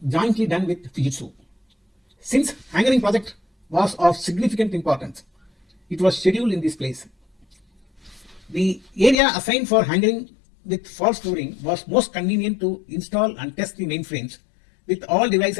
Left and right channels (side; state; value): right; drops out; at 9.2 s